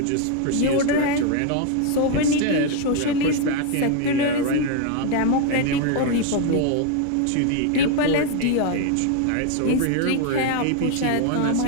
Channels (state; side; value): different; both; correlation 0.01